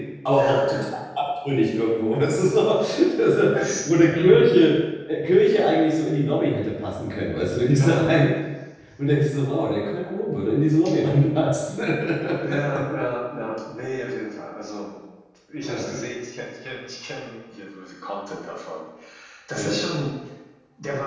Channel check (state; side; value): identical; both; correlation 1.00